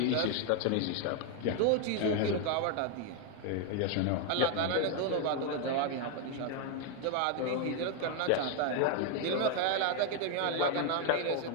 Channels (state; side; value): different; both; correlation 0.01